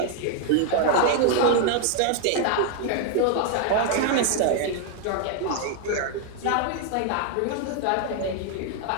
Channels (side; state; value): both; different; correlation 0.00